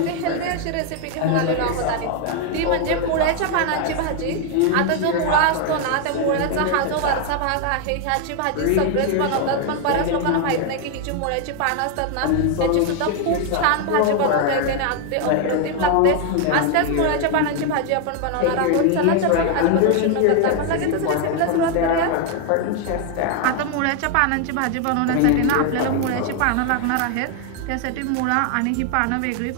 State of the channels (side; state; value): both; different; correlation 0.00